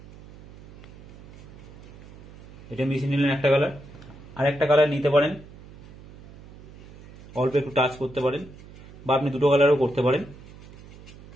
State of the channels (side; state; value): right; noise; hum, 20 dB below the sound